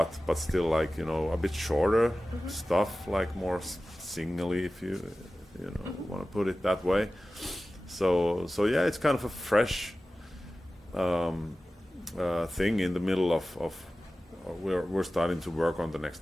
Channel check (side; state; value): both; normal; correlation 0.95